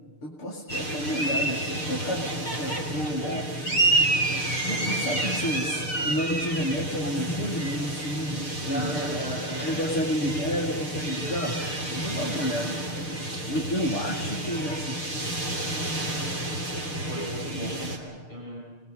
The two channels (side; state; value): right; late; 6.7 ms